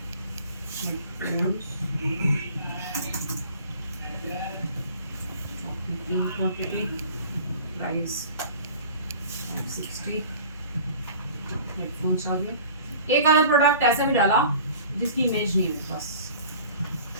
हेडफोन्स 3 क्वांटिटी, प्राइस 560। हेडफोन्स आ गए। एक आधा प्रोडक्ट ऐसा भी डाला जिसकी इमेज नहीं है मेरे पास,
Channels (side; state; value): both; inverted; correlation -0.45